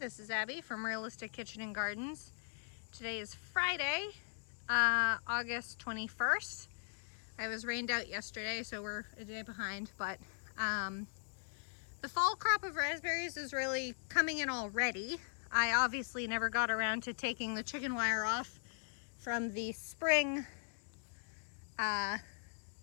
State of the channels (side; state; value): right; silent; digital silence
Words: is Abby from Realistic Kitchen and Gardens. Today is Friday, August 21st. I was rained out yesterday, so we're a day behind, but the fall crop of raspberries is really coming in already. I obviously never got around to taking the chicken wire off from the spring